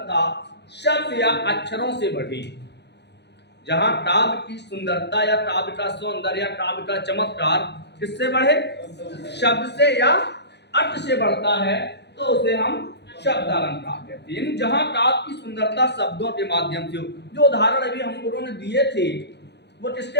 शब्द या अक्षरों से बढ़ी। जहां काव्य की सुंदरता या काव्य का सौंदर्य या काव्य का चमत्कार किससे बढ़े? शब्द से या अर्थ से बढ़ता है, तो उसे हम शब्दालंकार कहते हैं। जहां काव्य की सुंदरता शब्दों के माध्यम से हो। जो उदाहरण अभी हम लोगों ने दिए थे वो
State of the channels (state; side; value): late; right; 0.50 ms